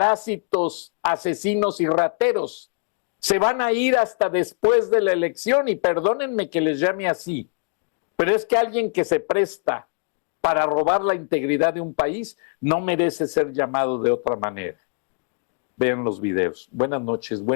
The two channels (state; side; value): quieter; right; 37.5 dB